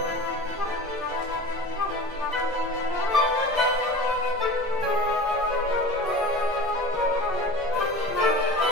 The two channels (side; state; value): both; normal; correlation 0.35